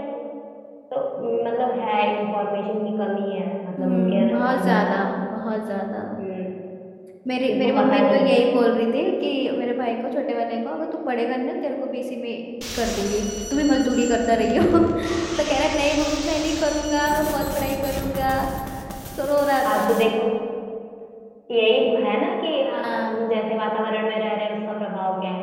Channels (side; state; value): both; identical; correlation 1.00